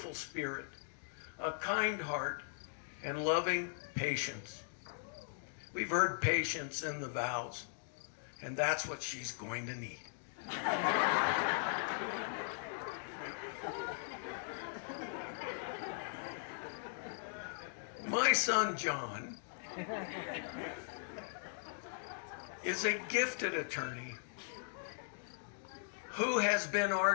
spirit, a kind heart, and loving patience. We've heard patience in the vows, and that's what she's going to need. My son John is a gifted attorney who has been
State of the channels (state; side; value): silent; right; digital silence